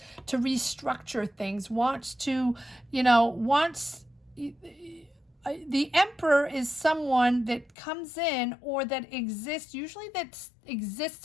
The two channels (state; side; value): drops out; right; at 7.7 s